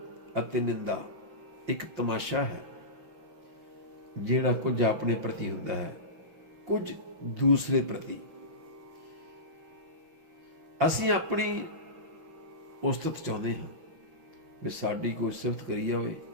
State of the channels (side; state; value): left; late; 6.0 ms